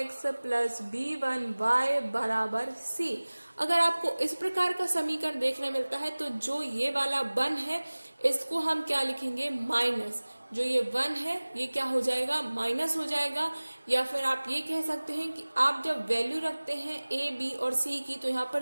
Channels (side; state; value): both; inverted; correlation -1.00